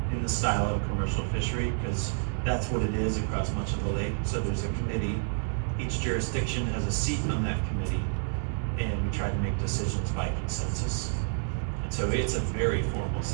in the style of a commercial fishery, because that's what it is across much of the lake. So there's a committee, each jurisdiction has a seat on that committee, and we try to make decisions by consensus. And so it's a very formal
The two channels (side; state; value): left; silent; digital silence